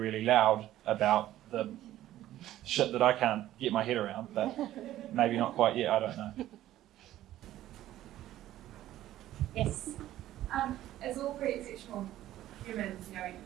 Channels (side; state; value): left; quieter; 13.7 dB